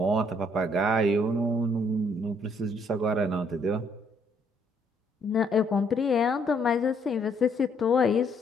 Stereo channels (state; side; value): normal; both; correlation 0.68